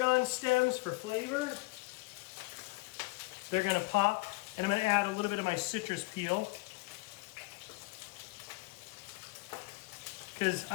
stems for flavor. They're going to pop. And I'm going to add a little bit of my citrus peel, because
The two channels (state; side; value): quieter; right; 24.9 dB